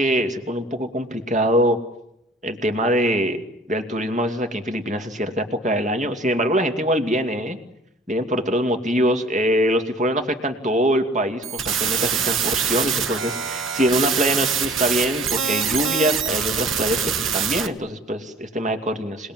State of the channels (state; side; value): normal; both; correlation 0.49